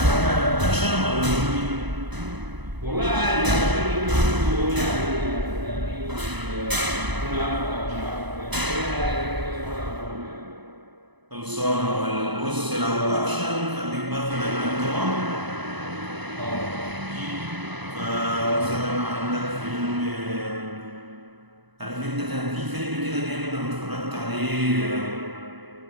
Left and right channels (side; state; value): left; late; 1.0 ms